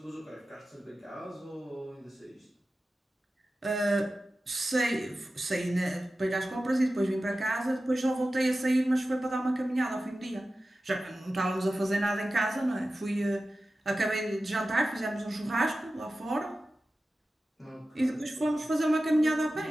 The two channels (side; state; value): both; normal; correlation 0.94